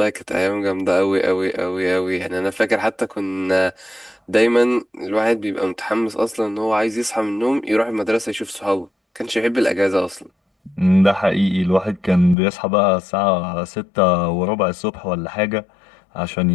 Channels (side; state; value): right; drops out; at 12.4 s